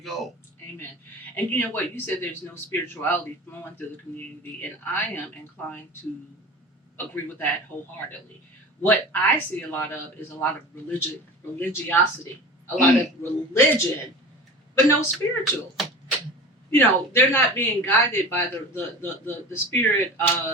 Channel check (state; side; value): normal; both; correlation 0.35